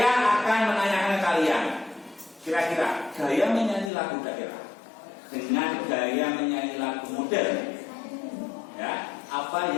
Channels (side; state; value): right; drops out; at 3.9 s